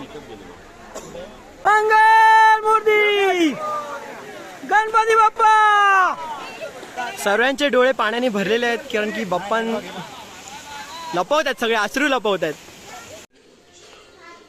मंगल मूर्ती गणपती बाप्पा. सर्वांचे डोळे पाण्याने भरलेले आहेत, कारण की बाप्पा लपवत आहेत, सगळे अश्रू लपवत आहेत.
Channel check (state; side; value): identical; both; correlation 1.00